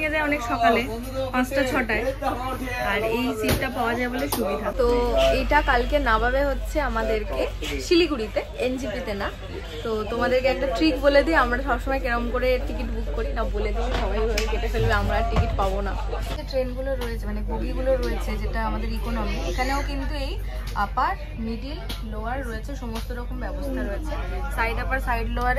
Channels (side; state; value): both; identical; correlation 1.00